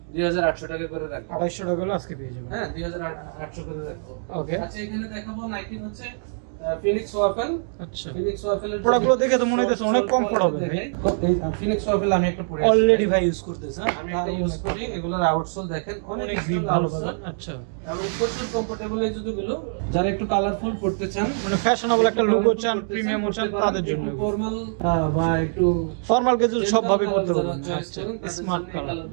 2800 টাকা করে রাখবো। 2800 টাকা হলে আজকে পেয়ে যাবেন। হ্যাঁ 2800 করে রাখবো। ওকে, আচ্ছা এখানে দেখাবো নাইকি হচ্ছে ফিনিক্স ওয়াফেল। আচ্ছা, ফিনিক্স ওয়াফেলের প্রোডাক্টগুলো দেখে তো মনে হইতেছে অনেক কমফোর্ট হবে ভাই। এই ফিনিক্স ওয়াফেল আমি একটা পরে অলরেডি ভাই ইউজ করতেছ, আমি এটা ইউজ করি। এগুলোর আউটসোল দেখেন অনেক গ্রিপ ভালো পাবেন। আচ্ছা, এবং প্রচুর কমফোর্টেবল এই জুতোগুলো। যারা একটু কালারফুল পড়তে চান, মানে ফ্যাশনেবল একটা লুকও চান, প্রিমিয়ামও চান, তাদের জন্য। ফর্মাল বা একটু ফর্মাল ক্যাজুয়াল সব ভাবে পড়তে পারবেন। আচ্ছা, স্মার্ট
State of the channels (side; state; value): left; silent; digital silence